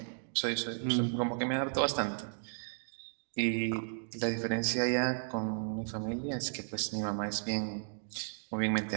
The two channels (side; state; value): left; silent; digital silence